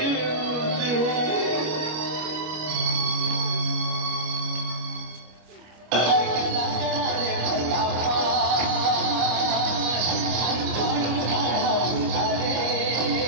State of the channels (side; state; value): left; late; 25 ms